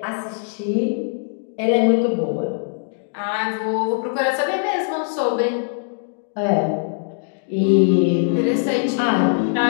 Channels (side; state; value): right; silent; digital silence